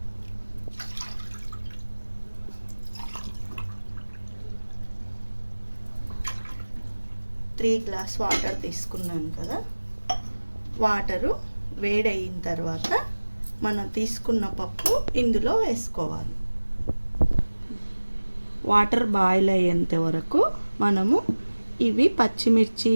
త్రీ గ్లాస్ వాటర్ తీసుకున్నాను కదా, వాటరు వేడయిన తర్వాత మనం తీసుకున్న పప్పు ఇందులో వేసుకోవాలి. వాటర్ బాయిల్ అయ్యేంత వరకు మనము ఇవి పచ్చిమిర్చి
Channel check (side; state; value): both; inverted; correlation -1.00